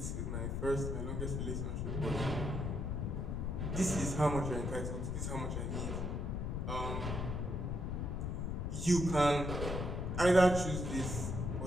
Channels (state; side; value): noise; left; rumble, 1 dB below the sound